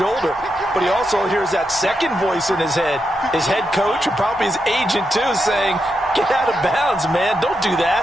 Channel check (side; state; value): both; normal; correlation 0.85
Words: But he also hears that second voice in his head. His head coach, and probably his agent too, saying, get out of bounds, man. Don't do